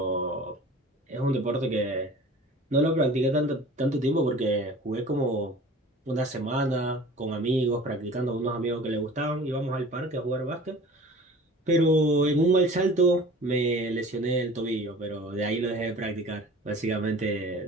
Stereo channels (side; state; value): both; normal; correlation 0.43